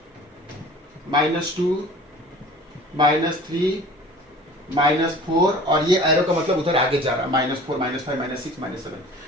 -2, -3, -4 और ये एरो का मतलब उधर आगे जा रहा है, -4, -5, -6, -7,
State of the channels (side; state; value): both; normal; correlation 0.45